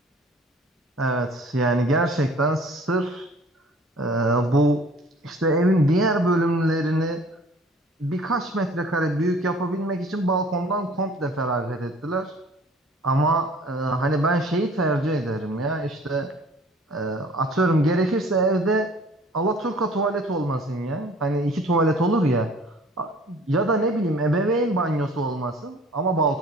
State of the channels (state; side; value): normal; both; correlation 0.50